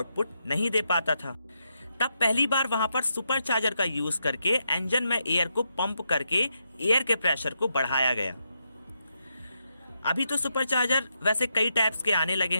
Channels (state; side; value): inverted; both; correlation -0.82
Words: नहीं दे पाता था। तब पहली बार वहां पर सुपरचार्जर का यूज करके इंजन में एयर को पंप करके एयर के प्रेशर को बढ़ाया गया। अभी तो सुपरचार्जर वैसे कई टाइप्स के आने लगे